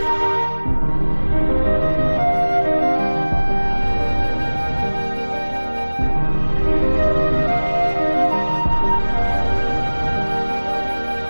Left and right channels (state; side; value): inverted; both; correlation -1.00